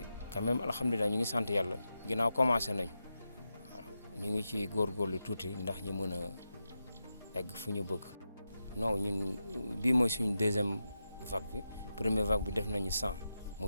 quand même alhamdulilah ñu ngi sant yàlla ginnaaw commencé nañu waaw ñu ngi ci góorgóorlu tuuti ndax ñu mën a egg fu ñu bëgg. non ñun bii mooy suñu deuxième vague bi première vague bi def nañu 100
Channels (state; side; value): inverted; both; correlation -0.89